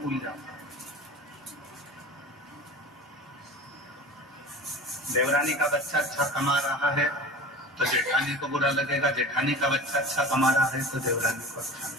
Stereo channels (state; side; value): normal; both; correlation 0.36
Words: फूल जाता है। देवरानी का बच्चा अच्छा कमा रहा है तो जेठानी को बुरा लगेगा, जेठानी का बच्चा अच्छा कमा रहा है तो देवरानी को अच्छा